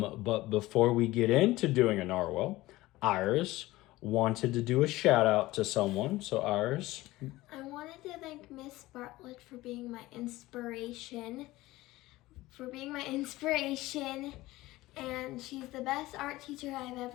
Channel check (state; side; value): quieter; right; 18.3 dB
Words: before we get into doing a narwhal, Iris wanted to do a shout out to someone. So Iris. I wanted to thank Miss Bartlett for being my inspiration. And she's the best art teacher I've